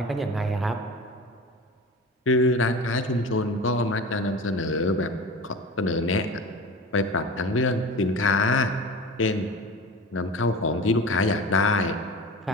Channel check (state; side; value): normal; both; correlation 0.34